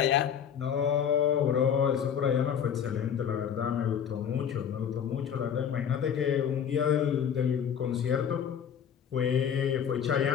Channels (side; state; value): right; quieter; 8.2 dB